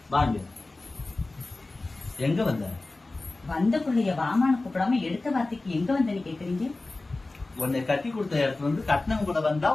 வாங்க. எங்க வந்த? வந்த பிள்ளைய வாமான்னு கூப்பிடாம எடுத்த வார்த்தைக்கு எங்க வந்தேன்னு கேக்குறீங்க? உன்னை கட்டி கொடுத்த இடத்துல வந்து கட்டினவங்க கூட வந்தா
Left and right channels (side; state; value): right; quieter; 3.1 dB